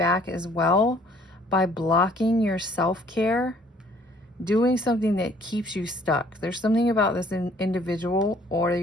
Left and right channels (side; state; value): both; normal; correlation 0.59